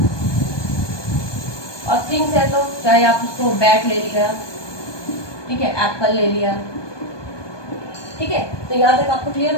और थिंग्स है तो चाहे आप उसको बैट ले लिया, ठीक है, एप्पल ले लिया, ठीक है। तो यहाँ तक आपको क्लियर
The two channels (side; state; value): right; late; 1.2 ms